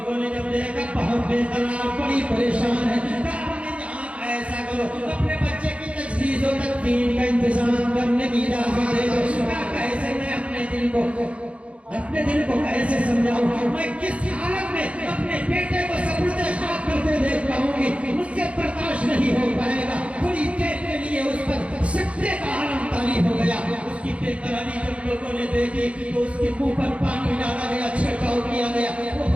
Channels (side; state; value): left; late; 0.062 ms